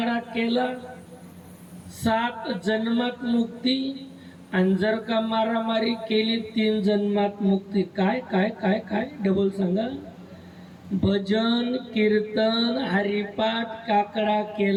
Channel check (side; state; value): both; identical; correlation 1.00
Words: केला 7 जन्मात मुक्ती, आणि जर का मारामारी केली 3 जन्मात मुक्ती. काय काय काय काय डबल सांगा. भजन कीर्तन हरिपाठ काकडा